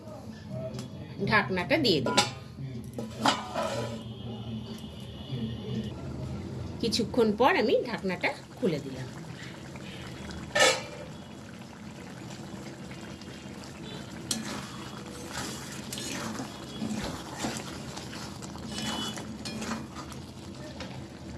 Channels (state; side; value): identical; both; correlation 1.00